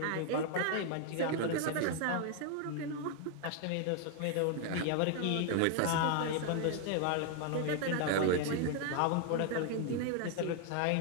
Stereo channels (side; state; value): both; different; correlation 0.00